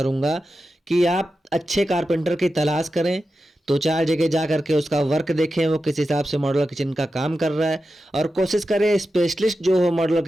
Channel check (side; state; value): both; normal; correlation 0.91